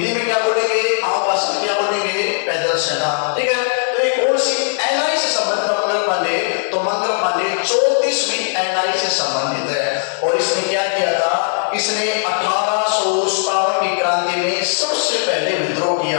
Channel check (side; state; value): right; silent; digital silence